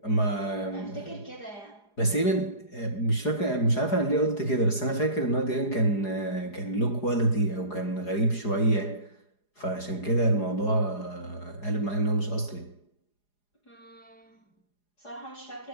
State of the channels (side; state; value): right; late; 4.8 ms